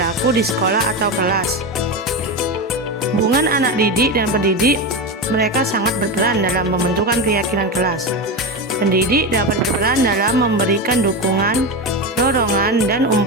di sekolah atau kelas. Hubungan anak didik dan pendidik, mereka sangat berperan dalam pembentukan keyakinan kelas. Pendidik dapat berperan dalam memberikan dukungan, dorongan, dan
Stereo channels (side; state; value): both; normal; correlation 0.18